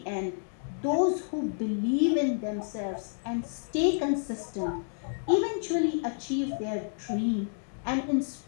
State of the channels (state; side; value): silent; right; digital silence